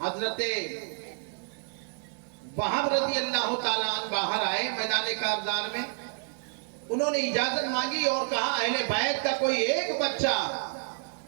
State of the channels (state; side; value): silent; left; digital silence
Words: وہاب رضی اللہ تعالیٰ عنہ باہر آئے میدان کارزار میں، انہوں نے اجازت مانگی اور کہا اہل بیت کا کوئی ایک بچہ